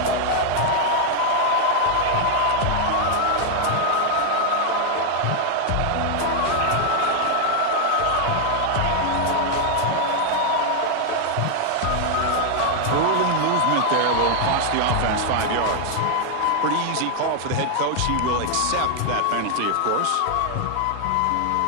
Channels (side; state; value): both; different; correlation 0.00